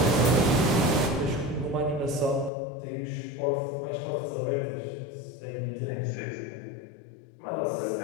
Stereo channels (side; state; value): right; drops out; at 2.5 s